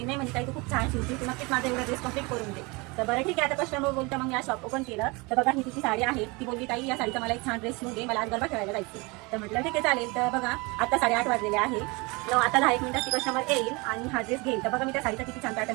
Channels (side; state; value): left; quieter; 26.7 dB